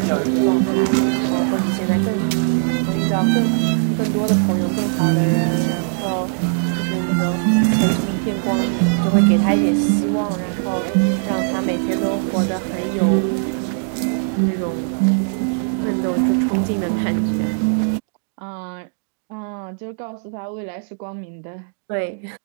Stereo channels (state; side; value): silent; left; digital silence